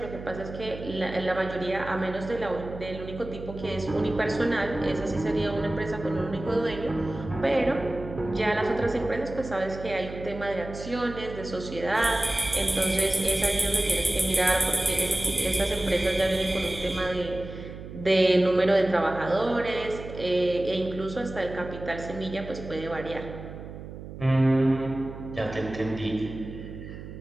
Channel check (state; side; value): noise; right; hum, 12 dB below the sound